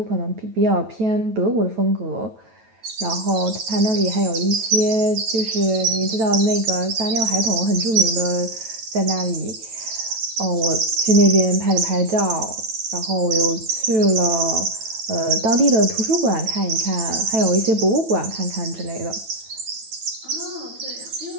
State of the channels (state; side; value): late; left; 9.1 ms